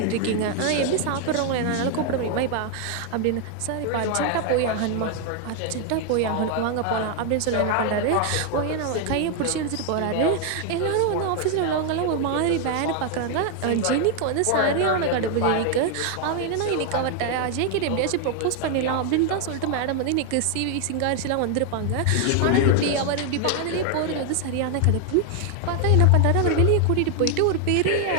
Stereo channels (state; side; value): different; both; correlation 0.00